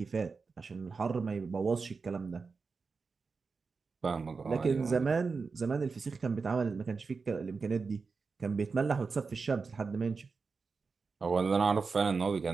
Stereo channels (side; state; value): left; quieter; 4.7 dB